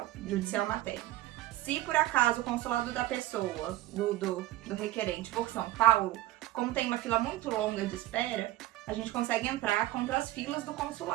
materno. Se por acaso o consulado da pessoa, do requerente, for São Paulo, como tem uma fila muito longa de espera, a gente consegue entrar contra as filas do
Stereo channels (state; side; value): quieter; left; 15.9 dB